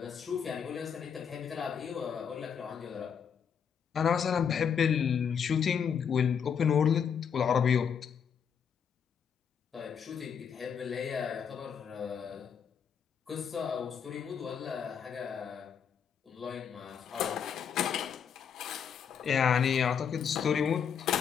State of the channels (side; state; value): right; quieter; 7.3 dB